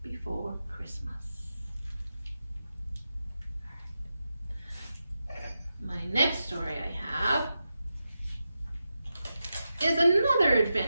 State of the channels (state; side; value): inverted; both; correlation -0.89